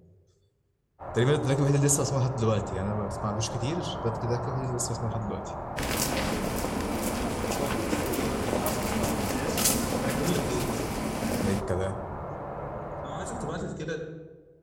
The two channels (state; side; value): identical; both; correlation 1.00